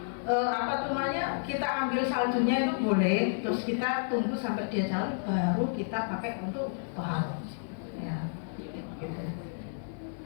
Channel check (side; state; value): right; silent; digital silence